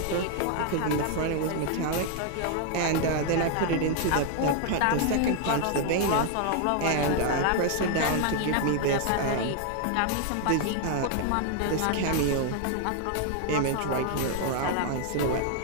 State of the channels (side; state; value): both; different; correlation 0.00